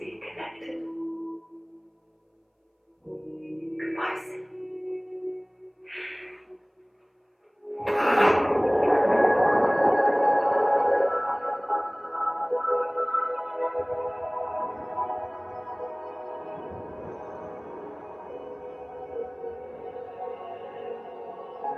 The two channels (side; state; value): both; identical; correlation 1.00